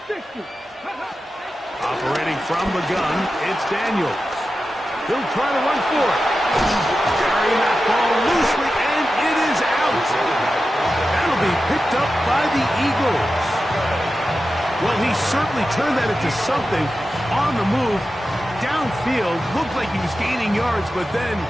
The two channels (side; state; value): both; normal; correlation 0.92